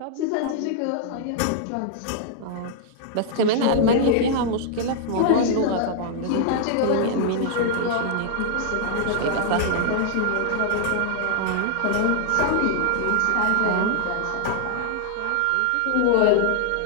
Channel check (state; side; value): different; both; correlation -0.01